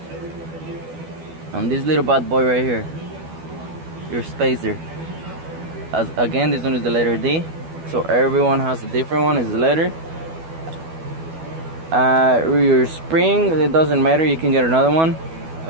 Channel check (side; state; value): left; late; 12 ms